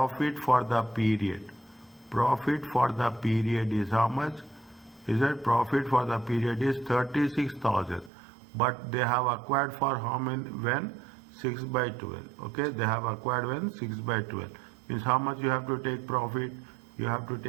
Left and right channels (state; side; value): drops out; left; at 8.1 s